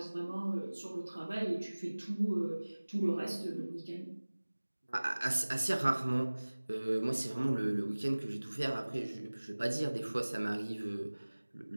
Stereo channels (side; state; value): both; inverted; correlation -1.00